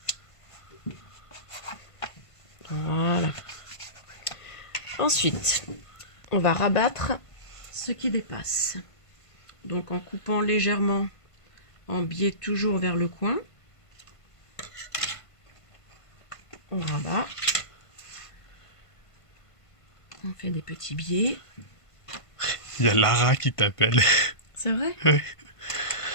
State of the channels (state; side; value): late; right; 1.5 ms